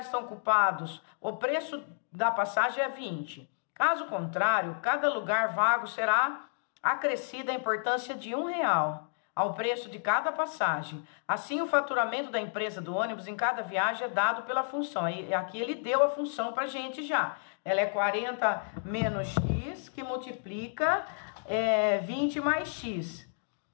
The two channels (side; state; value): right; silent; digital silence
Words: estão ocupados, o preço da passagem é 20. Caso contrário, cada lugar vago será acrescida a importância de R$1 ao preço de cada passagem. Assim, o faturamento da empresa do ônibus em cada viagem é dado pela função. E aqui ele deu a função para a gente já. Ela é 40 menos X, que multiplica 20 mais X.